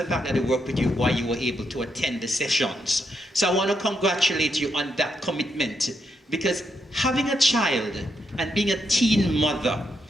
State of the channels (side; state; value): both; normal; correlation 0.81